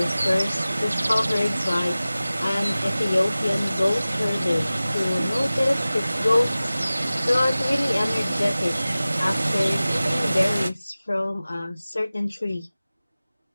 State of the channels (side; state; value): both; inverted; correlation -0.97